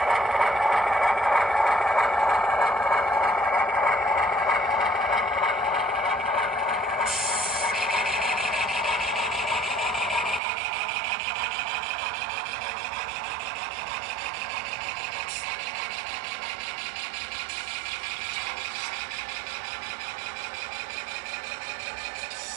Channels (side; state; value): left; drops out; at 10.4 s